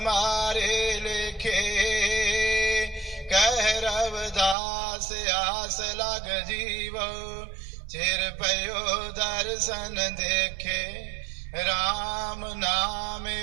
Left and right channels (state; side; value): drops out; left; at 4.5 s